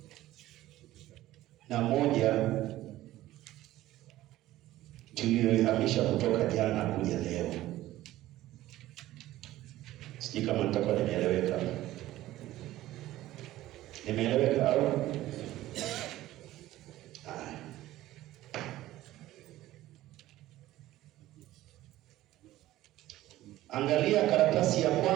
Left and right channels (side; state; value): left; quieter; 15.4 dB